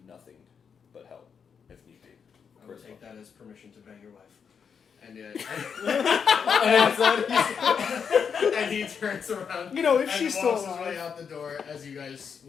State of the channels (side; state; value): right; quieter; 6.7 dB